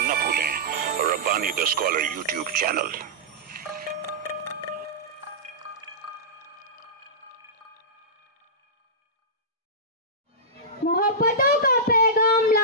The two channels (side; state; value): both; normal; correlation -0.14